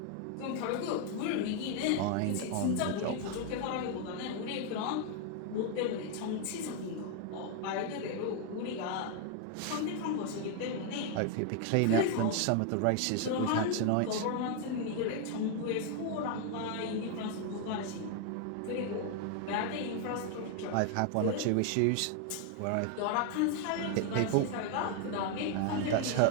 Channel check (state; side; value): different; both; correlation 0.00